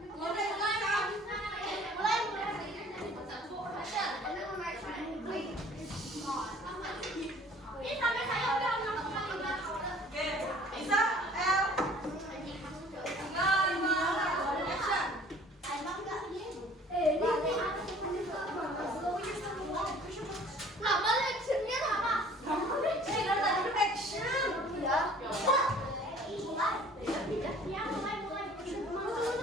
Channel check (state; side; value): normal; both; correlation 0.52